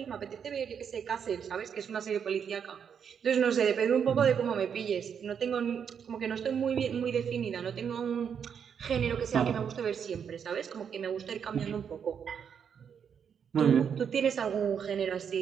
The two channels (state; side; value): quieter; left; 7.4 dB